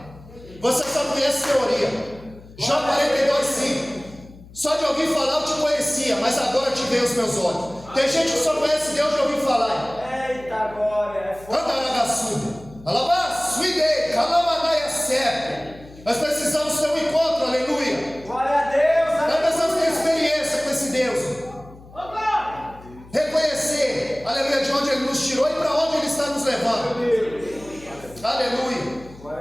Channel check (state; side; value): noise; left; hum, 20 dB below the sound